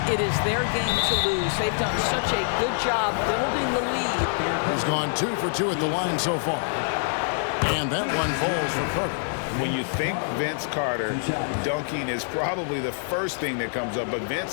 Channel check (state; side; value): silent; right; 58 dB below the other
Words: it is their game to lose. They've done such a good job building the lead. He's gone 2 for 2 at the line so far. And that one falls for Carter. When you think Vince Carter, dunking is probably the first thing that comes up. But